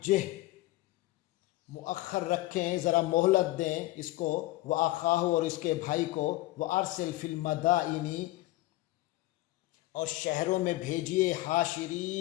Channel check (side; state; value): right; quieter; 17.9 dB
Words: مؤخر رکھیں، ذرا مہلت دیں اس کو، وأخاہ، اور اس کے بھائی کو، وأرسل فی المدائن، اور شہروں میں بھیجیے،